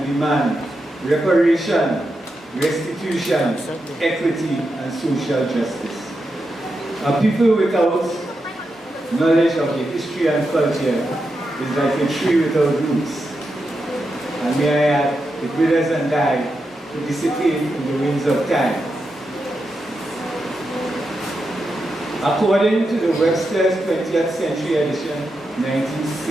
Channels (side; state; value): both; normal; correlation 0.87